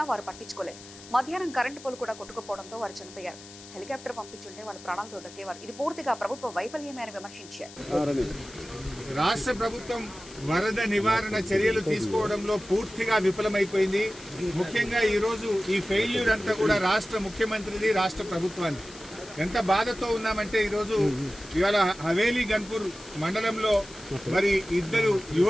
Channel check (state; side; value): noise; left; hiss, 18 dB below the sound